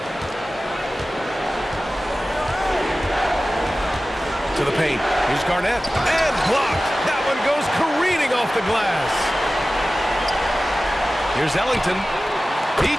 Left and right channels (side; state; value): both; normal; correlation 0.96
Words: To the paint. Here's Garnett. And blocked. That one goes careening off the glass. Here's Ellington. He